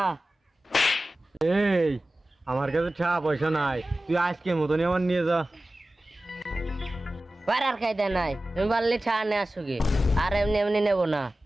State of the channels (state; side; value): normal; both; correlation 0.96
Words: এই আমার কাছে টাকা পয়সা নাই, তুই আজকে মতনই আমার নিয়ে যা। পাড়ার খাইতে নাই, তুমি পারলে ছা নে আসো গে, আর এমনি এমনি নেবো না।